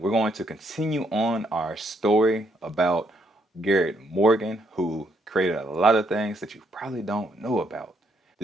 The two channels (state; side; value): normal; both; correlation 0.73